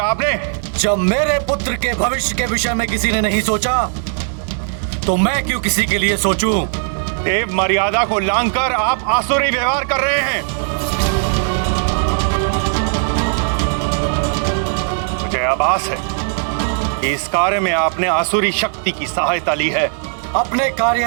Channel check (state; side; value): silent; left; 55 dB below the other